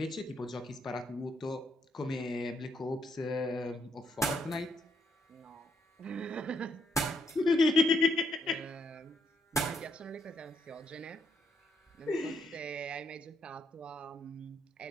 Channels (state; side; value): normal; both; correlation 0.75